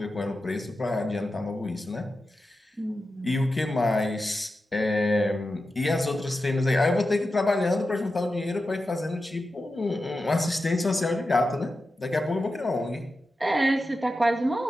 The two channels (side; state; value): both; normal; correlation 0.91